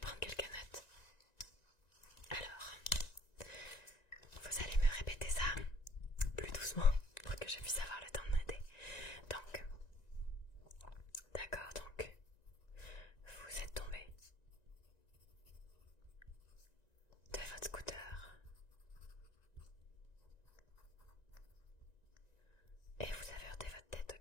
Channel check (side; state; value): right; late; 1.9 ms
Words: quelques notes. Alors, vous allez me répéter ça plus doucement pour que je puisse avoir le temps de noter. Donc, d'accord, donc, vous êtes tombé de votre scooter et vous avez heurté votre tête,